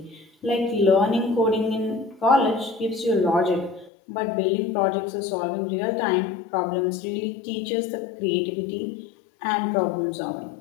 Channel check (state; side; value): drops out; right; at 3.9 s